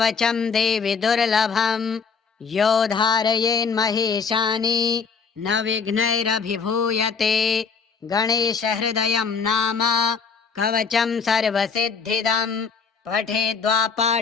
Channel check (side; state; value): right; quieter; 5.6 dB